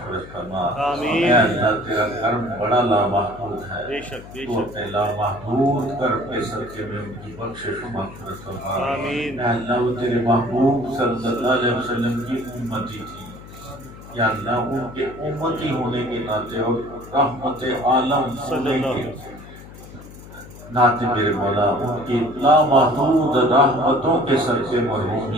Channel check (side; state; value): left; noise; hum, 17 dB below the sound